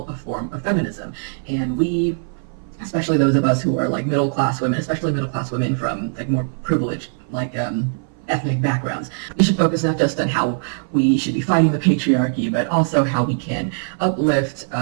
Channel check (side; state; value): left; silent; 59 dB below the other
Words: a form of feminism. And we, especially those of us who are like middle-class women, especially middle-class women from like more privileged like ethnic backgrounds, we should focus not just on how we should be fighting the patriarchy, but also how we can uplift